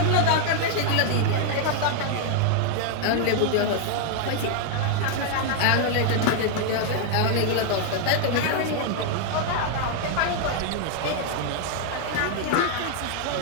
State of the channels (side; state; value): both; different; correlation 0.00